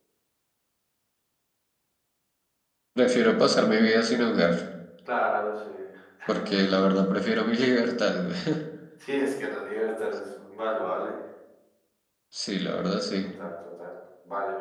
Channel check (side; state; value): both; identical; correlation 1.00